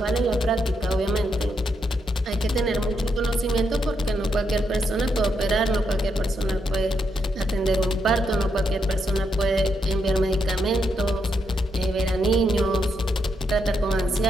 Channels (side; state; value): both; normal; correlation 0.80